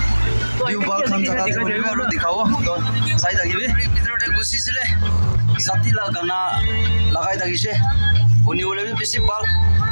ভিউ বাল খান জাগাতে কৰিব আৰু দেখাব তো চাই থাকিবি ভিতৰতে গুচিছিলে জাতিলা গানা লগাই থাকিছে শুনিবলৈ বেছি ভাল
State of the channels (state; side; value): inverted; both; correlation -1.00